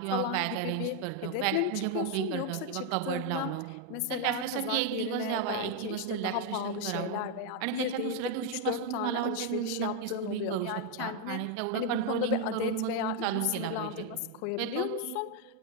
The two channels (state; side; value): different; both; correlation 0.01